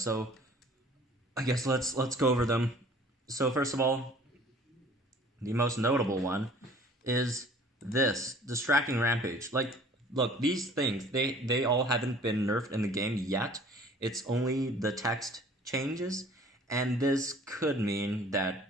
I guess let's go over them. So first of all, the most notable one is this Distracting Rampage. Like, look, these things, they all haven't been nerfed in the game yet. It's only the text changes, and this could mean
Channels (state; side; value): normal; both; correlation 0.51